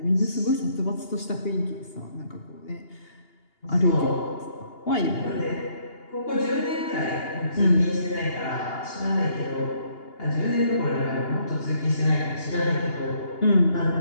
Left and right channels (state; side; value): late; right; 2.8 ms